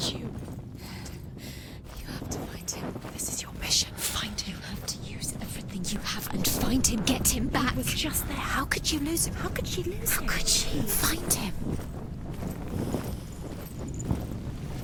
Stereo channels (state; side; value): identical; both; correlation 1.00